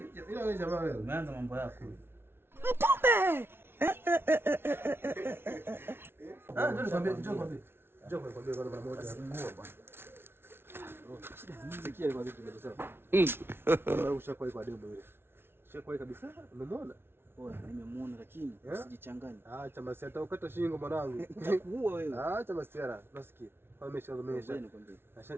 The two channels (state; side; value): late; left; 0.11 ms